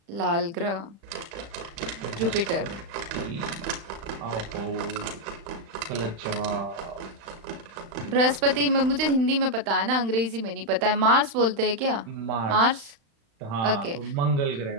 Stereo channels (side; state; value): left; late; 35 ms